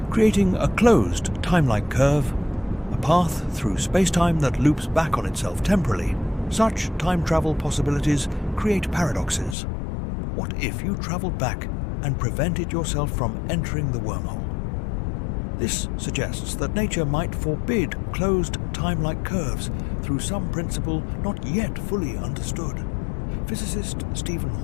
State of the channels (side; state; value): right; drops out; at 9.6 s